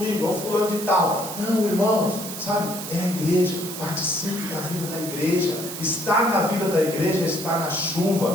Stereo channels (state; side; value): noise; right; hiss, 9 dB below the sound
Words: é o fulano de tal. Não, irmãos, sabe, é a igreja. Participe da vida da igreja. Estar na vida da igreja é estar na